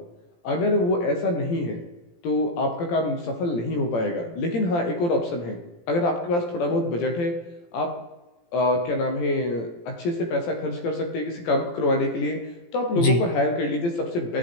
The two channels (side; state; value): right; late; 17 ms